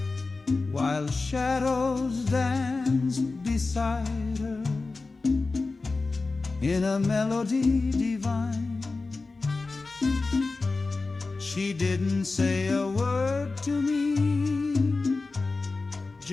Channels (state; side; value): quieter; right; 3.7 dB